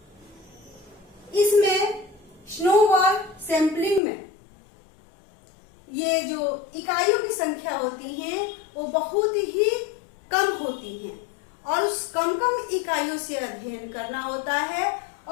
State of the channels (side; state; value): right; drops out; at 4.0 s